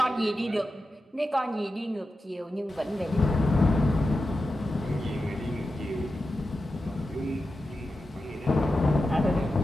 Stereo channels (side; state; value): both; normal; correlation 0.91